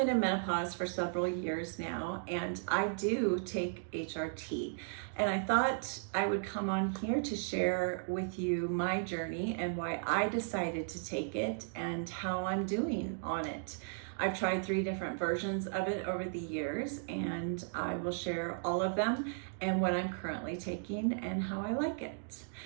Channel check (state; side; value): silent; left; digital silence